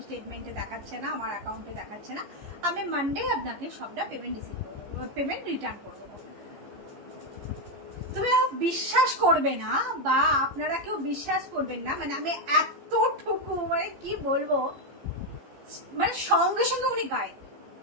স্টেটমেন্টে দেখাচ্ছে না, আমার অ্যাকাউন্টে দেখাচ্ছে না, আমি মানডে আপনাকে সবটা পেমেন্ট রিটার্ন করে দেবো। তুমি বিশ্বাস করবে না বা আপনারা কেউ বিশ্বাস করবেন না, মানে আমি এতটুকু মানে কি বলবো, মানে সঙ্গে সঙ্গে উনি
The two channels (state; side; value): late; left; 15 ms